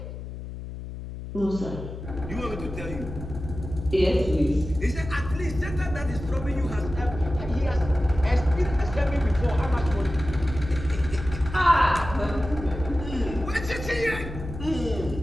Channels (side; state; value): left; noise; hum, 9 dB below the sound